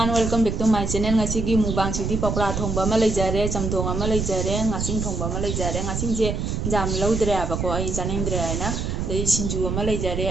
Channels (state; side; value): noise; right; rumble, 2 dB below the sound